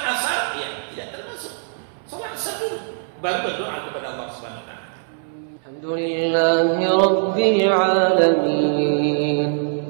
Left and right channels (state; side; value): silent; left; 64 dB below the other